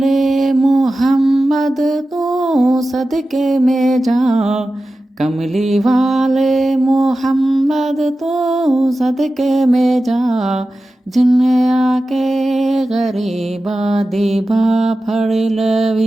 मोहम्मद तो सदके में जा, कमली वाले मोहम्मद तो सदके में जा, जिन्ने आके गरीबा दीबा फड़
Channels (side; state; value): both; normal; correlation 0.94